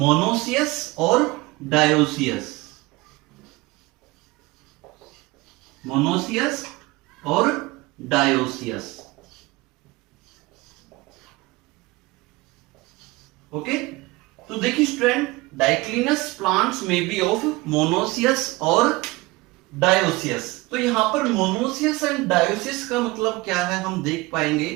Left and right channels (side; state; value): left; quieter; 21.6 dB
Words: और डायोसियस, मोनोसियस और डायोसियस। ओके, तो देखिए स्टूडेंट, डाइक्लिनस प्लांट्स में बी ऑफ मोनोसियस और डायोसियस। तो यहां पर मोनोसियस एंड डायोसियस का मतलब क्या है, हम देख पाएंगे